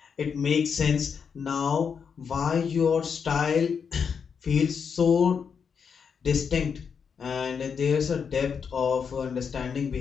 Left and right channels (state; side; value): quieter; right; 6.5 dB